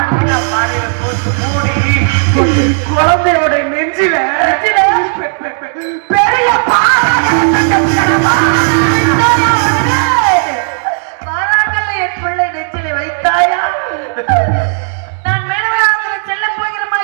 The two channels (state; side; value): silent; left; digital silence